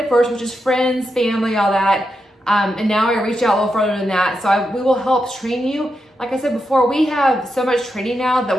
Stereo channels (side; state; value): both; normal; correlation 0.86